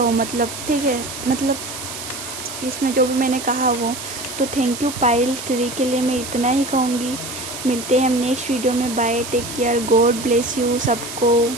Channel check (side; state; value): right; noise; hiss, 9 dB below the sound